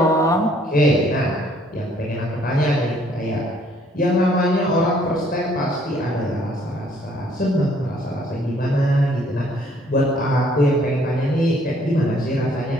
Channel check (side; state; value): both; normal; correlation 0.63